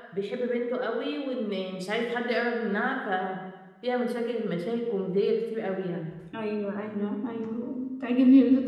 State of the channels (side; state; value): both; identical; correlation 1.00